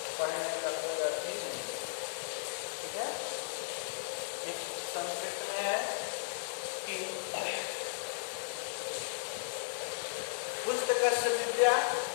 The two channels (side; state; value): right; silent; digital silence